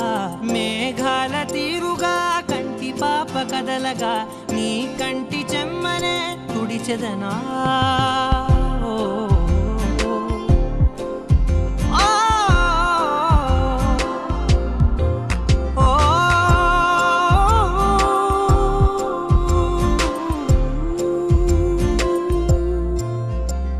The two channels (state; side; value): identical; both; correlation 1.00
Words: మేఘాల తీరుగా కంటి పాప కదలగా నీ కంటి చెమ్మనే తుడిచెదనా.